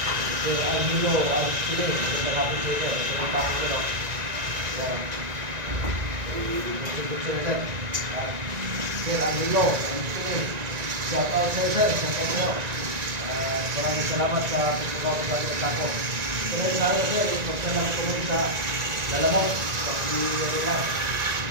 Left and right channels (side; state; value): left; late; 1.9 ms